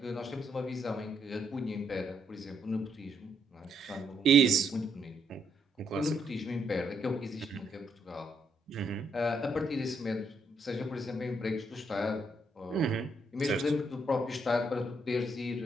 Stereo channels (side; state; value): both; normal; correlation 0.75